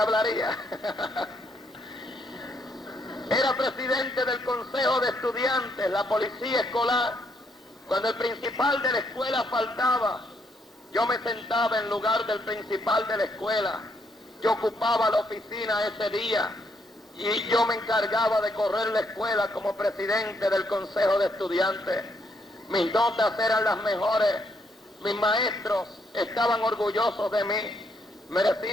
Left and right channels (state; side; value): normal; both; correlation 0.73